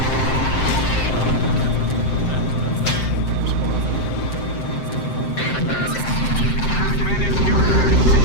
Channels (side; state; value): right; late; 7.7 ms